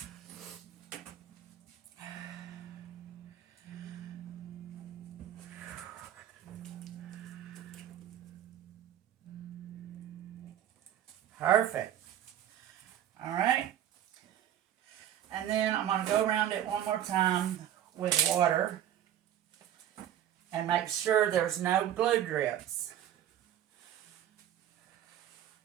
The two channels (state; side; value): quieter; left; 11.2 dB